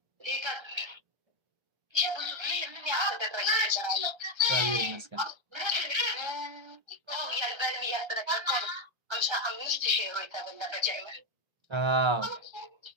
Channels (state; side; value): late; left; 1.3 ms